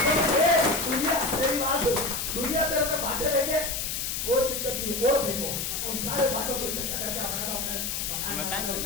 दुनिया तेरे पे बांटे फेंके, कोई दिक्कत नहीं, और फेंको, उन सारे बांटों को इकट्ठा करके अपना तो अपने मकान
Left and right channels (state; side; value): noise; left; hiss, 2 dB below the sound